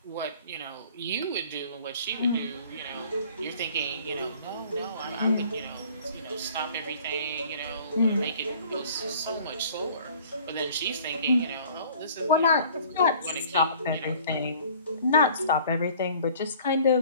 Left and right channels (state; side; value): inverted; both; correlation -0.52